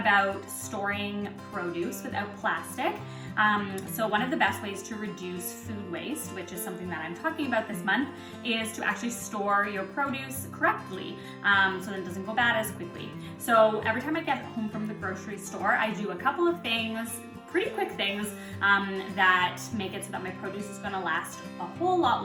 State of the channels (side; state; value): both; identical; correlation 1.00